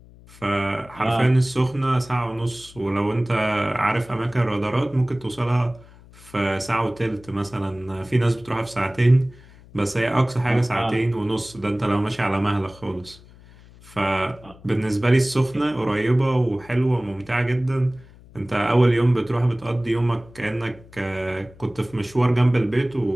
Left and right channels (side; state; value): left; noise; hum, 23 dB below the sound